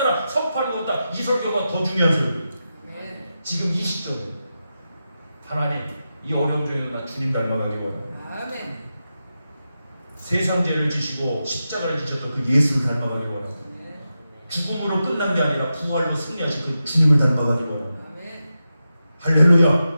선포하는 것보다 이 설교가 더 중요한 설교예요. 지금 이 시점에 하나님 이 어려움 중에도 나 주님 닮아가기 원합니다. 아멘. 세상 죄를 지시고 십자가를 지셨던 그 예수를 닮아가기 원합니다. 죽음으로 끝난 게 아니라 부활로 승리하신 그 주님을 닮아가기 원합니다. 아멘.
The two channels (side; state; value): both; inverted; correlation -0.90